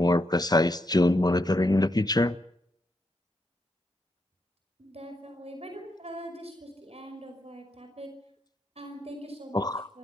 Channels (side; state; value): both; normal; correlation 0.79